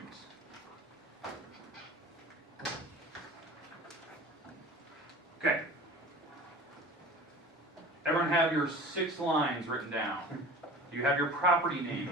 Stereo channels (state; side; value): normal; both; correlation 0.40